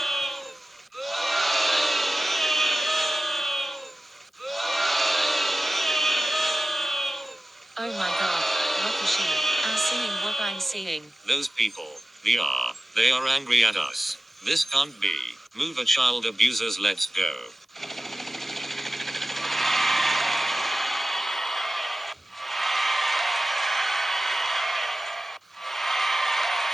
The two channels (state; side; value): normal; both; correlation 0.96